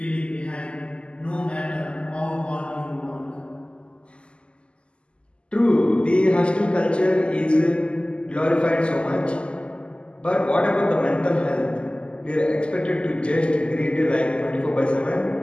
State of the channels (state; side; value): late; right; 0.053 ms